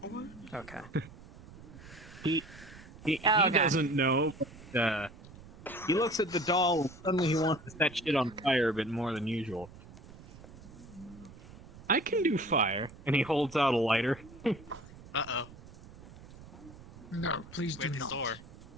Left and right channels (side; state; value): right; noise; rumble, 18 dB below the sound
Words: Okay. he Oh, okay. doesn't know. But, he looks at the doll and suddenly he wants to set shit on fire a bit more than usual. I can do fire, and he holds out a lighter. Uh-oh. No, please do Where's the not.